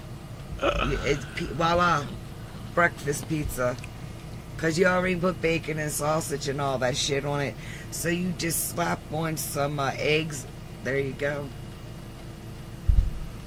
It's voila. Breakfast pizza. Because you already put bacon and sausage and all that shit on it. So you just slap on some eggs. There you go.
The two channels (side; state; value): both; identical; correlation 1.00